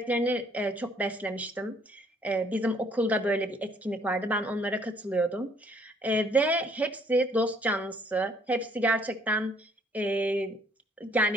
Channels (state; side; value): normal; both; correlation 0.63